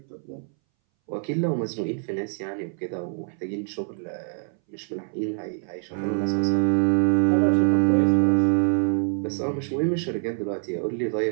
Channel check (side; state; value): left; silent; 61 dB below the other